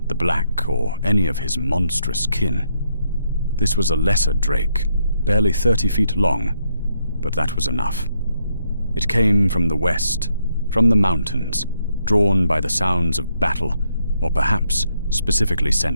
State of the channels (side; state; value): both; inverted; correlation -0.75